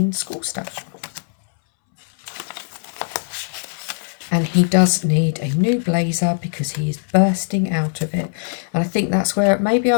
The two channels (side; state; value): right; silent; 65 dB below the other